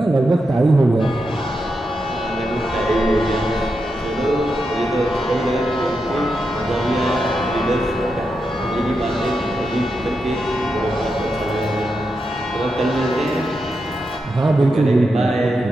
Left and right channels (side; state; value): both; normal; correlation 0.86